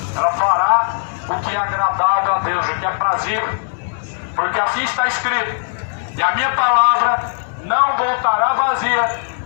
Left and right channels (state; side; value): silent; right; digital silence